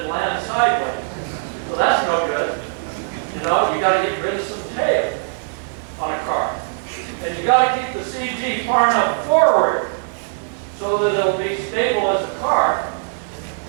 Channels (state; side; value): silent; left; 58 dB below the other